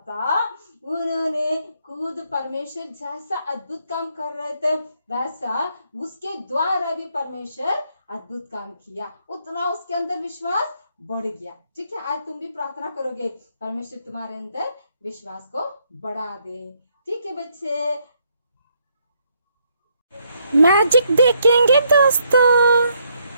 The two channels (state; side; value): inverted; both; correlation -0.73